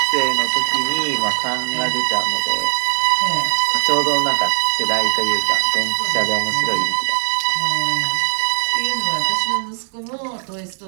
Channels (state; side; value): silent; left; 67 dB below the other